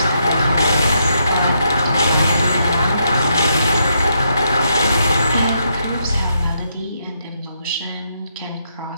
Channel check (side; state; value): both; inverted; correlation -0.78